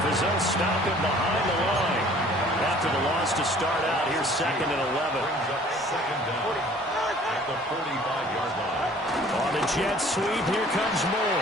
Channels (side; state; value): both; normal; correlation 0.53